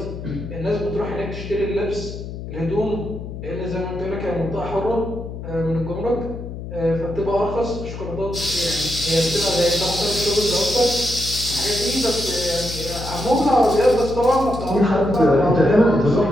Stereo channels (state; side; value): noise; left; hum, 9 dB below the sound